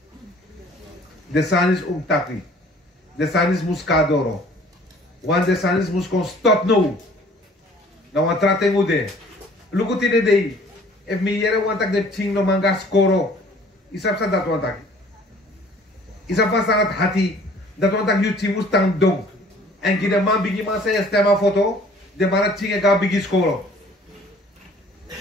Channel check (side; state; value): both; normal; correlation 0.54